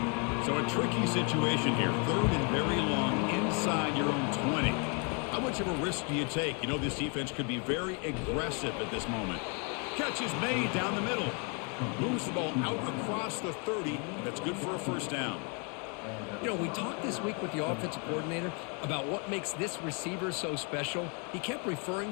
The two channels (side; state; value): right; quieter; 35.9 dB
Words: So a tricky situation here. Third and very long inside your own 20. How much of a risk do you take? You know this defense could be very aggressive at this moment. Catch is made down the middle. Moves the ball out across the 30. That's good for a first down. You know, we talked this week with the offensive coordinator about what makes this receiver so special. He kept